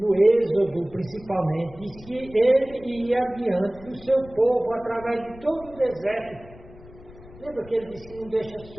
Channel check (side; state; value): left; noise; rumble, 20 dB below the sound